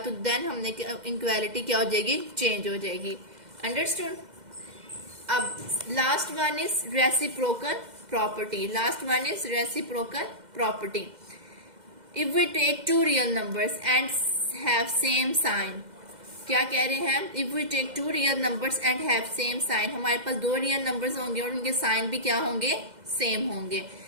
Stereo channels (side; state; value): left; late; 2.1 ms